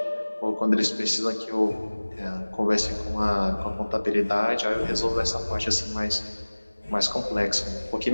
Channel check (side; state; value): both; inverted; correlation -1.00